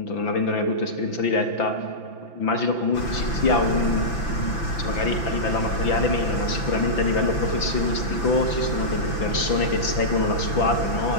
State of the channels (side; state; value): right; late; 5.9 ms